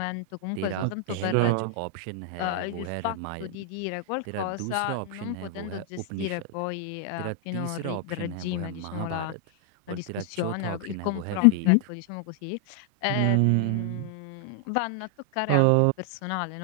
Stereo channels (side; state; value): both; different; correlation 0.00